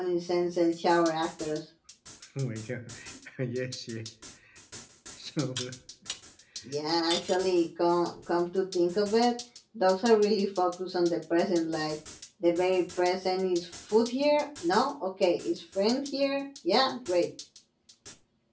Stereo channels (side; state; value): both; identical; correlation 1.00